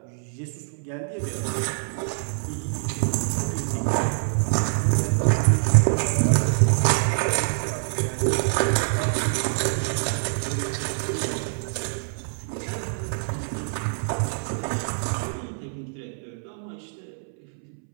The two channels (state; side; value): silent; left; 62 dB below the other